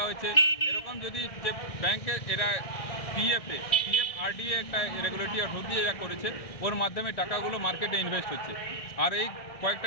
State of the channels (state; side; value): late; right; 1.6 ms